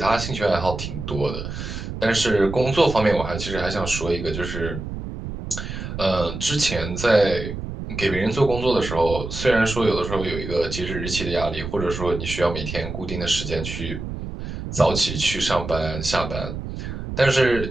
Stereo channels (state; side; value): noise; right; rumble, 7 dB below the sound